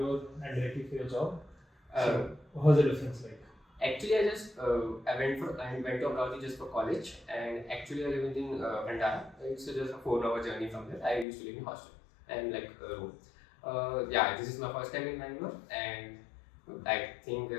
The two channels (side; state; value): right; drops out; at 11.2 s